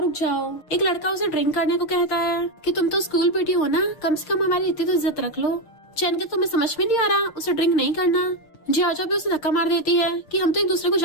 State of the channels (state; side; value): late; right; 6.6 ms